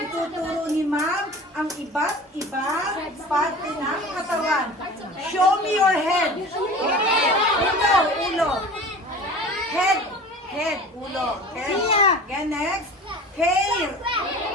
ni ma'am ang iba't ibang parte ng katawan. Show me your head. Ulo. Head, ulo. Okay? Again, next. Hair.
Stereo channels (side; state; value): both; normal; correlation 0.39